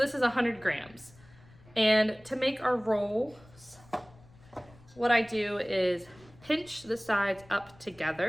is 100 grams. And to make our rolls, what I do is pinch the sides up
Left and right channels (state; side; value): noise; left; rumble, 25 dB below the sound